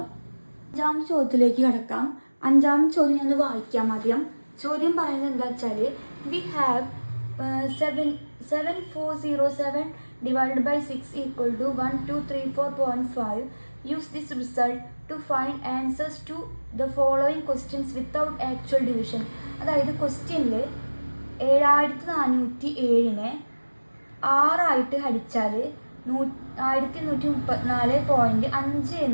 5ാമത്തെ ചോദ്യത്തിലേക്ക് കടക്കാം. 5ാമത്തെ ചോദ്യം ഞാൻ വായിക്കാം ആദ്യം. ചോദ്യം പറയുന്നത് എന്താ വെച്ചാൽ, we have 7407 divided by 6 equal to 1234.5. Use this result to find answers to the following questions without actual division. അതായത് ക്വസ്റ്റ്യനിൽ 7407-നെ 6 ഹരിച്ചാൽ 1134.5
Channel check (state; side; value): inverted; both; correlation -1.00